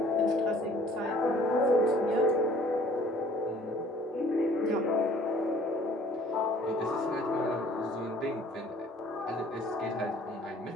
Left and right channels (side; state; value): both; normal; correlation 0.55